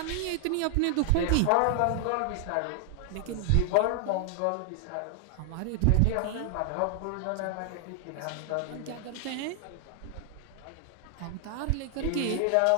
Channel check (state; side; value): different; both; correlation 0.00